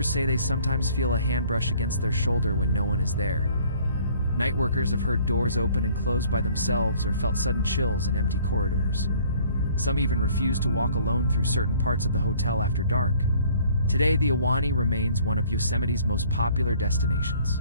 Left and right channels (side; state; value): both; inverted; correlation -0.57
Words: say they sometimes feel a hand brush against their shoulder when no one is there. Night workers have heard doors open and close by themselves or felt sudden chills in empty corridors. Some even refuse to walk alone through certain parts of the hotel after dark. Today, the Ahwahnee remains one of Yosemite's most popular destinations,